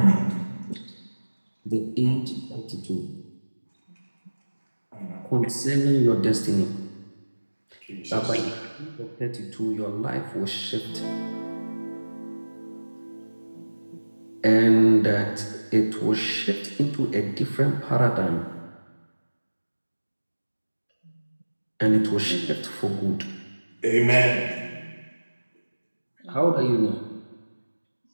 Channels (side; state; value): both; inverted; correlation -1.00